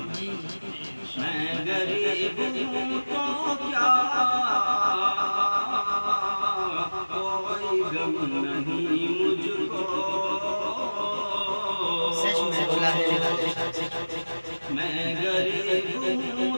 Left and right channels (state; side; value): inverted; both; correlation -1.00